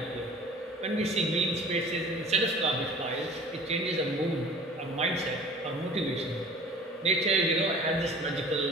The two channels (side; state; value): both; normal; correlation 0.45